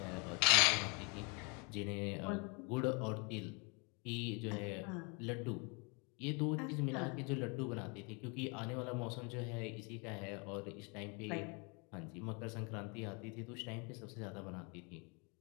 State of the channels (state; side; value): quieter; right; 32.5 dB